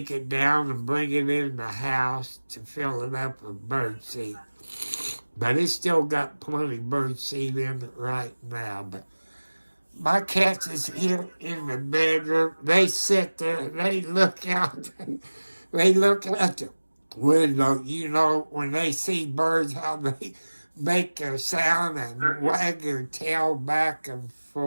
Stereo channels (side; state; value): both; inverted; correlation -1.00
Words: it down and bring it in the house to fill it up with bird seed. But it's still got plenty of bird seed in it right now. But my cats is here in the bedroom. They sit there, they look out, they look out the window. You know, when they see birds, how they make their sound and wag their tail back and